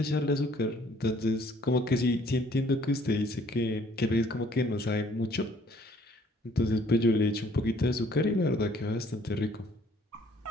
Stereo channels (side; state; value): both; normal; correlation 0.60